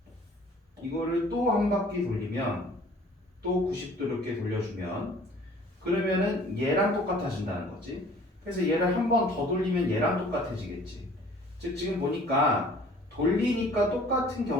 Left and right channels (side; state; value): both; normal; correlation 0.52